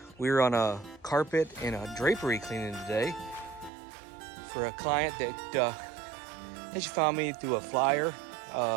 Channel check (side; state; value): left; drops out; at 3.7 s